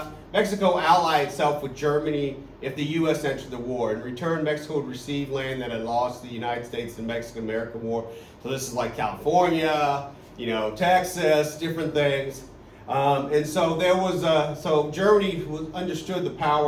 ally itself with Germany if the U.S. entered the war. In return, Mexico would receive land that had lost the United States in the Mexican-American War. So this is like California, Texas, different things. And so there was so Germany understood the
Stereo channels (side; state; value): both; identical; correlation 1.00